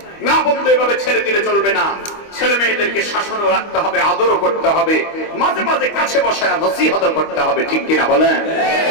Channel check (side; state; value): right; late; 25 ms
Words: না বলতে এভাবে ছেড়ে দিলে চলবে না। ছেলে মেয়েদেরকে শাসনও রাখতে হবে, আদরও করতে হবে, মাঝে মাঝে কাছে বসায় নসিহত করতে হবে। ঠিক কিনা বলেন?